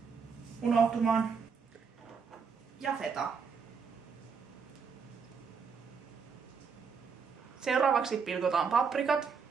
unohtumaan. Ja feta. Seuraavaksi pilkotaan paprikat.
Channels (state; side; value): quieter; left; 5.8 dB